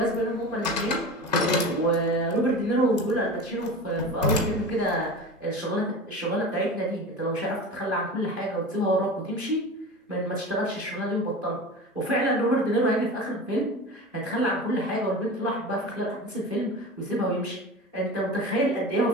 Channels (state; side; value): normal; both; correlation 0.31